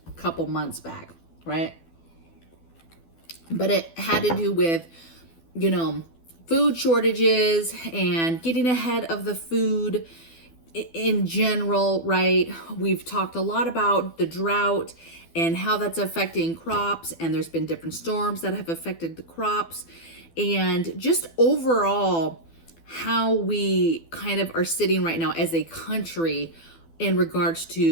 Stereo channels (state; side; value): late; right; 12 ms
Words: a couple months back, right? But it had to do with, food shortages and getting ahead of the food in general, right? We've talked a lot about the drought and how that's affecting crops, and there's been different storms that have affected the crops, and just overall how we kind of are sitting right now as a country in regards